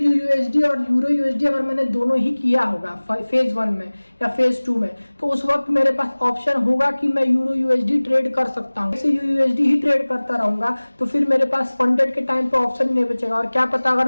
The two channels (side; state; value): both; inverted; correlation -1.00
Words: और यूरो यूएसडी अगर मैंने दोनों ही किया होगा फेज 1 में या फेज 2 में, तो उस वक्त मेरे पास ऑप्शन होगा कि मैं यूरो यूएसडी ट्रेड कर सकता हूँ। XAUUSD ही ट्रेड करता रहूंगा, तो फिर मेरे पास फंडेड के टाइम पे ऑप्शन नहीं बचेगा। और क्या पता अगर